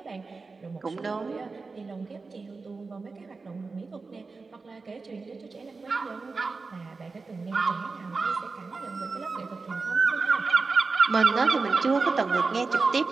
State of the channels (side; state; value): left; quieter; 4.2 dB